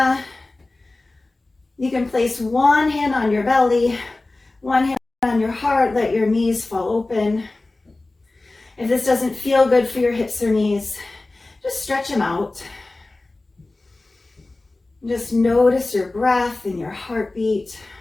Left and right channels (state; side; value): quieter; right; 3.1 dB